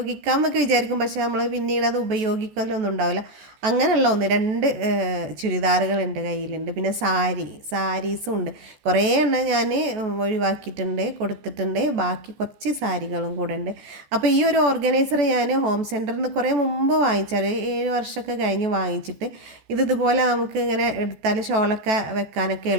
എന്നൊക്കെ വിചാരിക്കും, പക്ഷെ നമ്മൾ പിന്നീട് അത് ഉപയോഗിക്കലൊന്നും ഉണ്ടാവില്ല. അങ്ങനെയുള്ള 1-2 ചുരിദാറുകളുണ്ട് കയ്യിലുണ്ട്. പിന്നെ സാരീസും ഉണ്ട്. കുറേ എണ്ണം ഞാൻ ഒഴിവാക്കിയിട്ടുണ്ട്, കൊടുത്തിട്ടുണ്ട്. ബാക്കി കുറച്ച് സാരികളും കൂടെ ഉണ്ട്. അപ്പോൾ ഈ ഒരു ഓർഗനൈസർ ഞാൻ ഹോം സെൻറ്ററിൽ നിന്ന് കുറേ മുമ്പ് വാങ്ങിച്ചാൽ 7 വർഷമൊക്കെ കഴിഞ്ഞ് വാങ്ങിച്ചിട്ട് ഇതുപോലെ നമുക്ക് ഇങ്ങനെ എടുത്താൽ ഷോളൊക്കെ വെക്കാനൊക്കെ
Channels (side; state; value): left; late; 14 ms